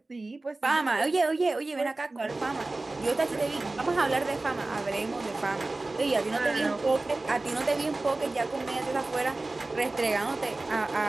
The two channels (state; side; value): quieter; left; 3.1 dB